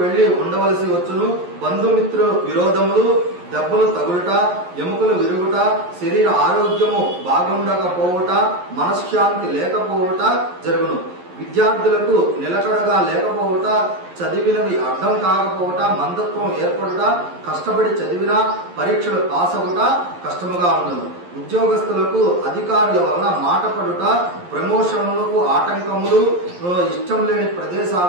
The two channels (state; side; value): late; left; 11 ms